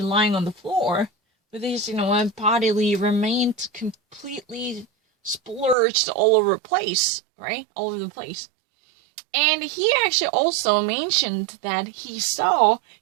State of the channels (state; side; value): drops out; left; at 5.8 s